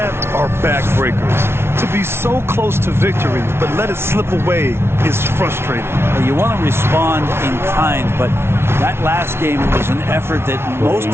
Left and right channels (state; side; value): late; left; 0.12 ms